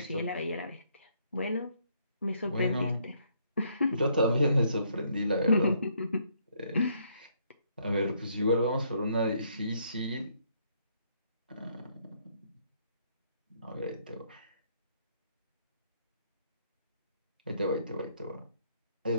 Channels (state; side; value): inverted; both; correlation -0.70